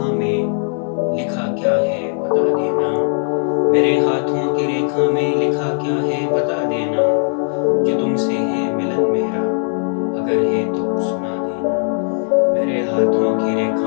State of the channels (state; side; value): silent; right; 67 dB below the other